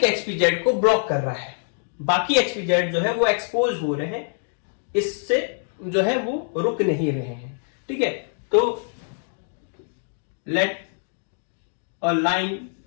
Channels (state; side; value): silent; right; digital silence